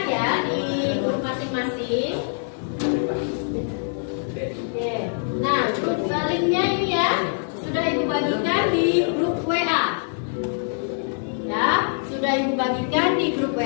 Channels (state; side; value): silent; right; 63 dB below the other